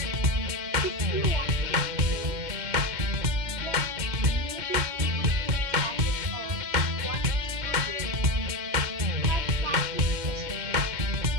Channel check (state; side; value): late; left; 2.2 ms